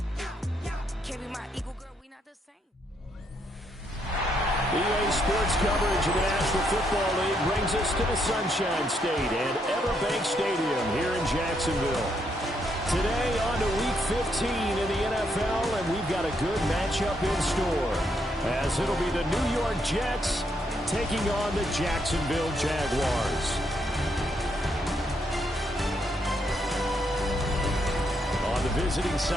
Can't be my equal, girl, we not the same. EA Sports coverage of the National Football League brings us to the Sunshine State and Everbank Stadium here in Jacksonville. Today on to Week 15 in the NFL, and we've got a good matchup in store, as it'll be the New York Jets taking on the Jacksonville Jaguars. On the visiting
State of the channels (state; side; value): normal; both; correlation 0.76